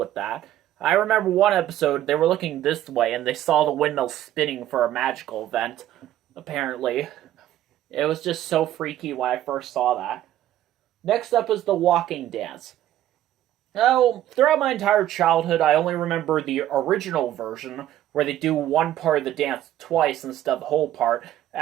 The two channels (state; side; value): quieter; left; 12.8 dB